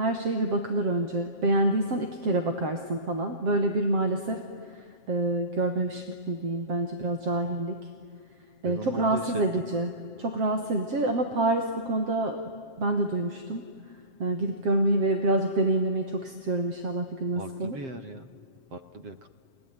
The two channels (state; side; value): late; left; 7.6 ms